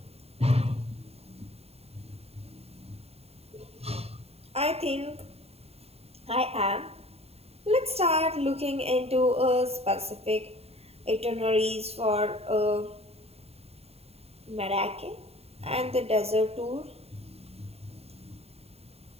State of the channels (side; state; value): left; late; 0.29 ms